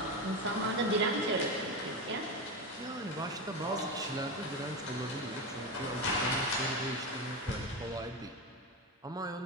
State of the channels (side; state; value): both; normal; correlation 0.17